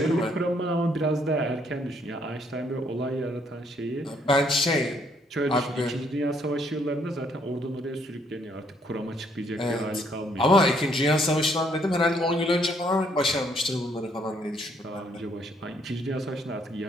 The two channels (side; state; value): both; normal; correlation 0.68